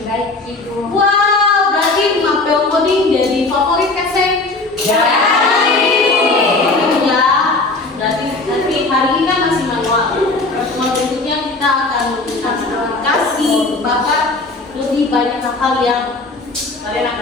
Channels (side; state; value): right; quieter; 3.3 dB